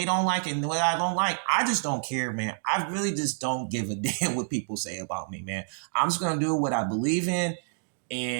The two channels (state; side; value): silent; left; digital silence